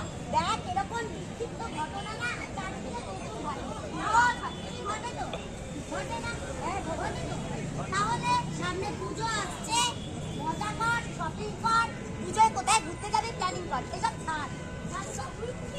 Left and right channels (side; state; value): both; identical; correlation 1.00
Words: দেখ, এরকম বিক্ষিপ্ত ঘটনা না চারিদিকে প্রচুর ঘটে। ঘটে তো? ঘটে না? হ্যাঁ, ঘটে তো। তাহলে সামনে পুজো আসছে, মজা কর, শপিং কর, পুজোয় কোথায় ঘুরতে যাবি প্ল্যানিং কর, এসব ছাড়।